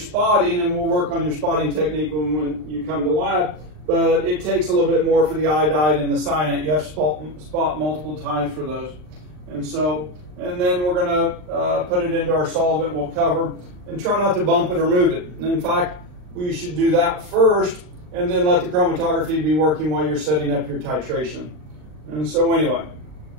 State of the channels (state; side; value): late; left; 39 ms